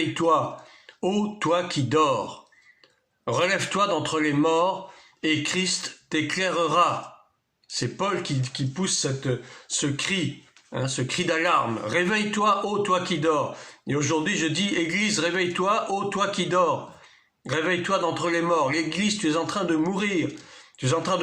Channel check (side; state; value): both; identical; correlation 1.00